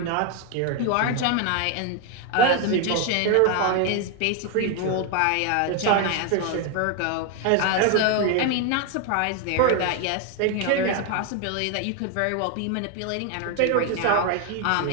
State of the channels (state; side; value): different; both; correlation 0.01